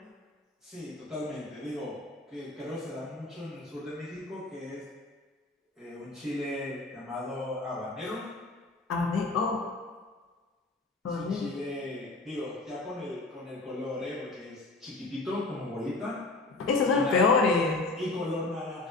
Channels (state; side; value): quieter; right; 3.2 dB